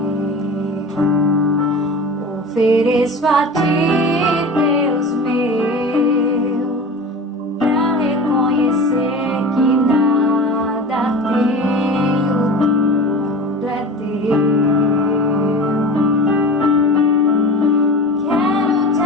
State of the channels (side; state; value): both; normal; correlation 0.34